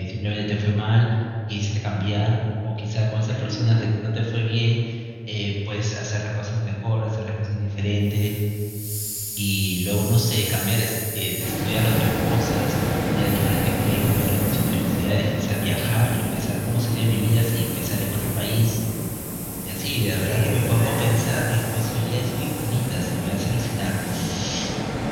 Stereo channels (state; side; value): identical; both; correlation 1.00